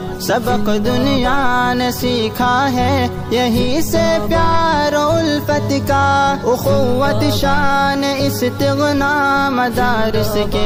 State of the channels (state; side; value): identical; both; correlation 1.00